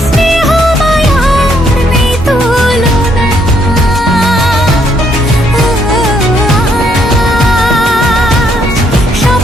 স্নেহ মায়ার নেই তুলনা।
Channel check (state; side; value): normal; both; correlation 0.71